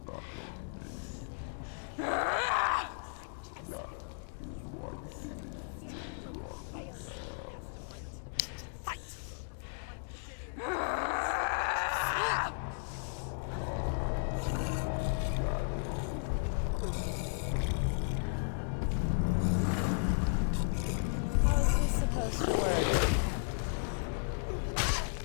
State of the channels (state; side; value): silent; right; digital silence